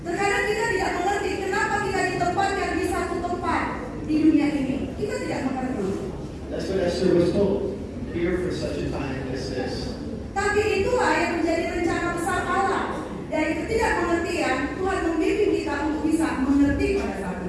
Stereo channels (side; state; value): both; identical; correlation 1.00